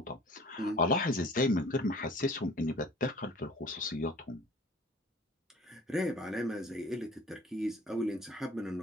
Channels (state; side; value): normal; both; correlation 0.48